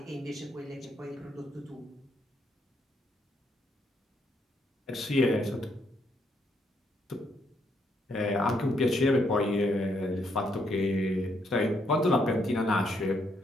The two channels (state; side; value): normal; both; correlation 0.74